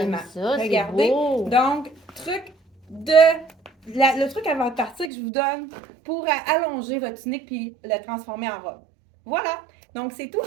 j'aime ça, c'est Regardez. beau. Donc, truc de le truc avant de partir que je vous donne pour allonger votre tunique puis le transformer en robe. Voilà. Donc, c'est tout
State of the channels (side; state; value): left; drops out; at 5.1 s